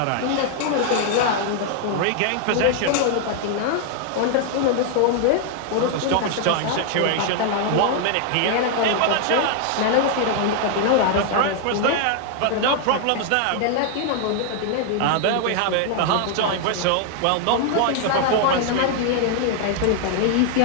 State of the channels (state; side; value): different; both; correlation 0.00